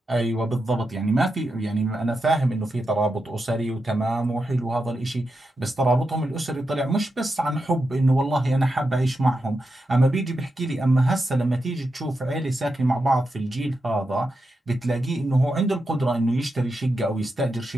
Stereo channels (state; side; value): normal; both; correlation 0.87